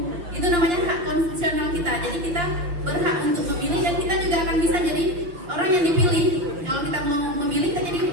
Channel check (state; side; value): late; left; 6.2 ms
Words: Itu namanya hak konstitusional kita. Jadi kita berhak untuk memilih dan kita juga akan bisa jadi orang yang dipilih. Kalau kita mau memilih, kita jadi